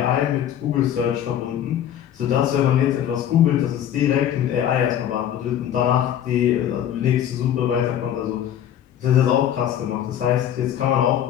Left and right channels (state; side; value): quieter; right; 10.4 dB